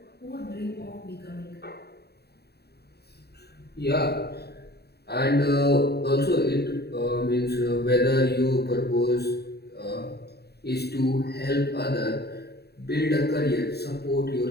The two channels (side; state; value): right; late; 0.47 ms